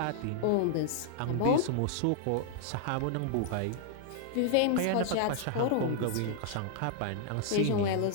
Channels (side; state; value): both; different; correlation 0.00